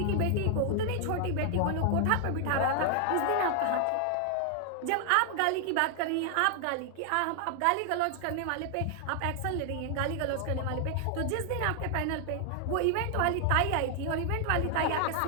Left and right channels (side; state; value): both; different; correlation 0.00